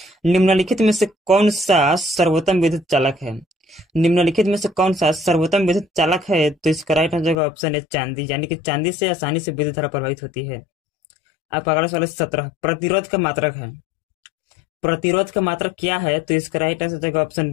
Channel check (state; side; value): drops out; right; at 7.4 s